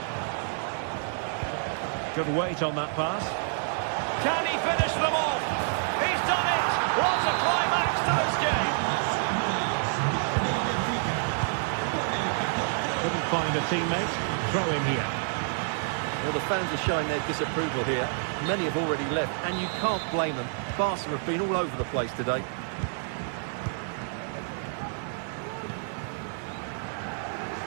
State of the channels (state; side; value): silent; left; 59 dB below the other